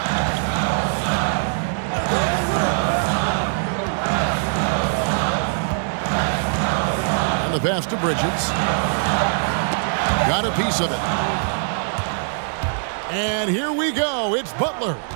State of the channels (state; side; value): silent; left; digital silence